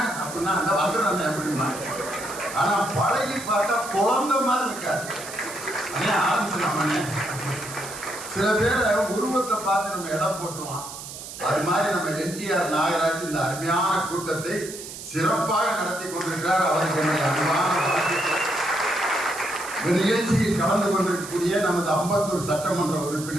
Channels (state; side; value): noise; right; hiss, 11 dB below the sound